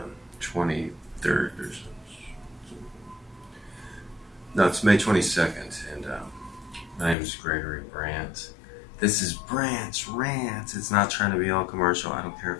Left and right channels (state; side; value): drops out; right; at 7.2 s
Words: 23rd or so. No, it's May 22nd, and my name is Gregory Brandt. This is Brandt's Rant. It's not trying to be all commercial. I don't care